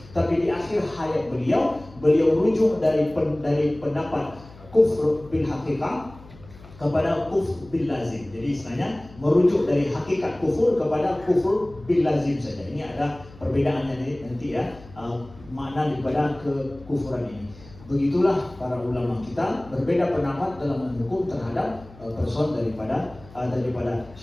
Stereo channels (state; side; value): noise; left; hum, 21 dB below the sound